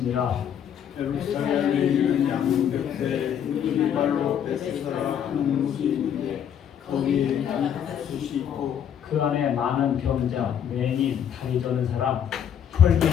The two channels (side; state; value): right; quieter; 8.9 dB